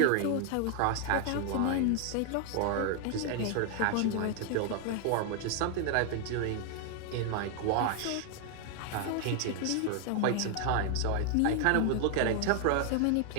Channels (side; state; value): both; different; correlation 0.00